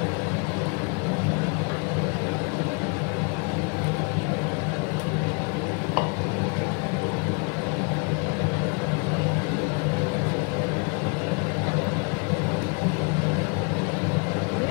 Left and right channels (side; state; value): right; quieter; 33.8 dB